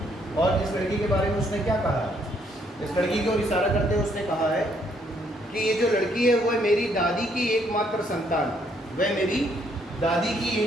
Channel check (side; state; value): both; normal; correlation 0.70